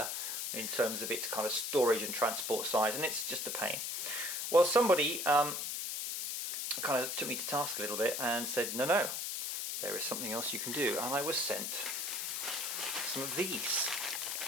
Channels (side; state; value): left; noise; hiss, 2 dB below the sound